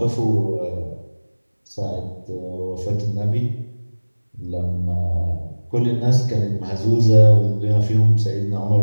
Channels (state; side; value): inverted; both; correlation -1.00